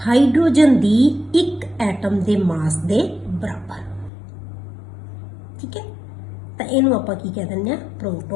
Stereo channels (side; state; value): right; drops out; at 4.1 s